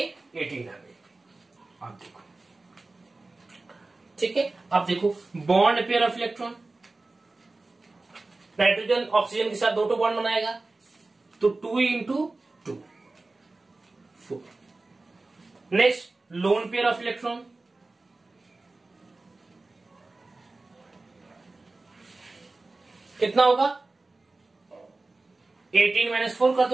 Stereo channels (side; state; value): left; quieter; 3.3 dB